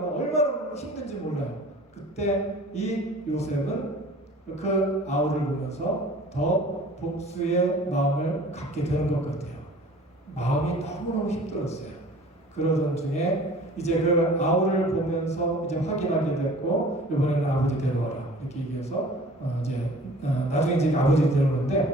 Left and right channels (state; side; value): normal; both; correlation 0.46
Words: 얼마나 힘든지 몰라요. 그때 이 요셉은 그 아우를 보면서 더 복수의 마음을 갖게 되는 것 같아요. 마음이 너무너무 힘들었어요. 그러던 중에 이제 그 아우를 보면서 이제 확인하게 됐고 이번에는 아버지 데려와라 이렇게 얘기해서 나중에 이제 아버지